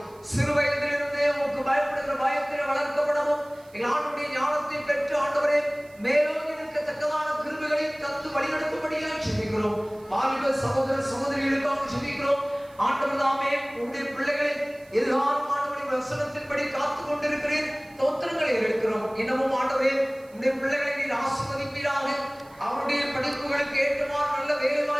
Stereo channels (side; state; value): right; noise; hiss, 28 dB below the sound